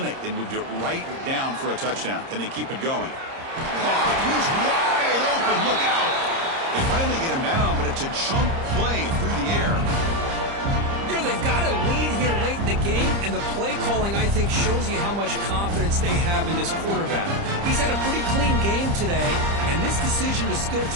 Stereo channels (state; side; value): late; left; 30 ms